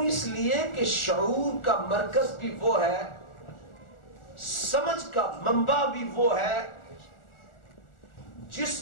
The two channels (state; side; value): late; right; 1.4 ms